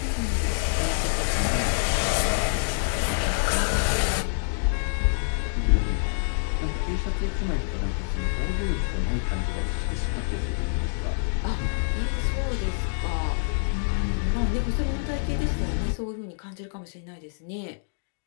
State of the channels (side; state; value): right; silent; digital silence